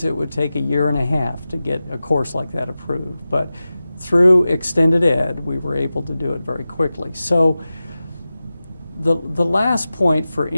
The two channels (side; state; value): both; inverted; correlation -0.94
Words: it would take 1.5 years to get a course like that approved. But through Extended Ed, we were able to do it very quickly. So the last point for